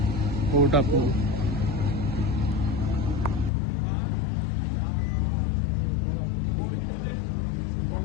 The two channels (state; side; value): drops out; right; at 3.5 s